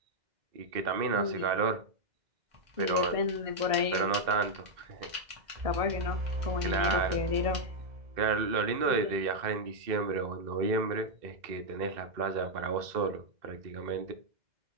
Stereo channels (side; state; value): left; late; 2.0 ms